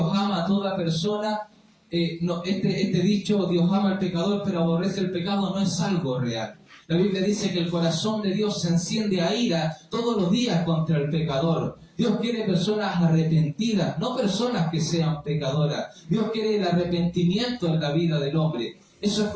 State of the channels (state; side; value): identical; both; correlation 1.00